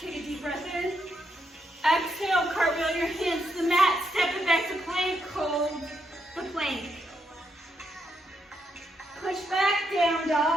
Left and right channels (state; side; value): normal; both; correlation 0.79